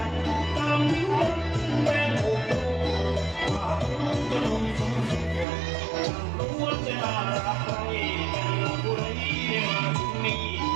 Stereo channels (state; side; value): drops out; left; at 5.5 s